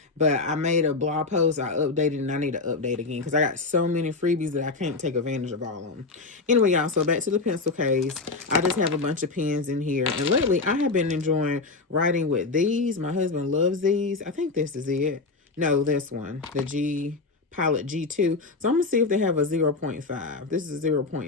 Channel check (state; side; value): quieter; right; 3.9 dB